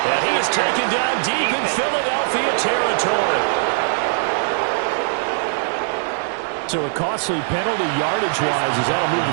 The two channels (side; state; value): left; silent; digital silence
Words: he is taken down deep in Philadelphia territory. So a costly penalty yardage-wise as that'll move